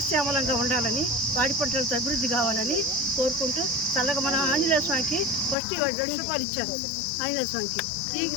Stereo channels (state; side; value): drops out; right; at 5.6 s